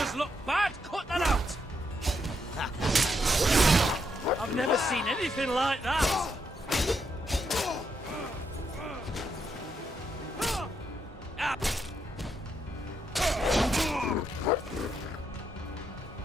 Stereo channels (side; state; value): both; normal; correlation 0.79